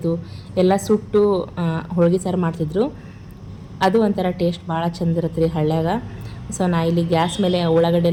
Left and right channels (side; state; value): both; identical; correlation 1.00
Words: ಎಲ್ಲ ಸುಟ್ಟು ಹೋಳ್ಗೆ ಸಾರು ಮಾಡ್ತಿದ್ರು. ಅದು ಒಂಥರ ಟೇಸ್ಟ್ ಭಾಳ ಚಂದ ಇರುತ್ತೆ ರೀ ಹಳ್ಳ್ಯಾಗ. ಸೊ ನಾ ಇಲ್ಲಿ ಗ್ಯಾಸ್ ಮೇಲೆ ಉಳ್ಳಾಗಡ್ಡೆ